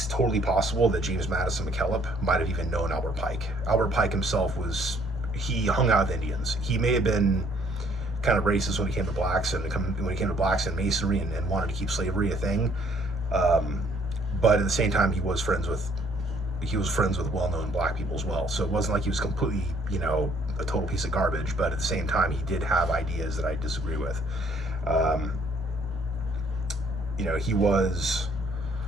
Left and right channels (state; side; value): normal; both; correlation 0.63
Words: totally possible that James Madison McKellop might have even known Albert Pike. Albert Pike himself was he hung out with Indians. He may have been kind of racist when it came to blacks and Masonry and wanted to keep slavery a thing. But at the same time, he was friends with well-known black people as well. So it wasn't like he was completely, a total piece of garbage. But at the same time, he did have ideas that I disagree with. He was,